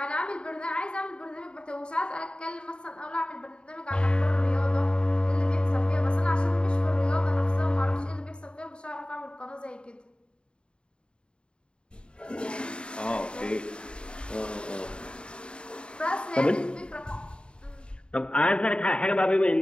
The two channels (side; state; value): right; late; 0.053 ms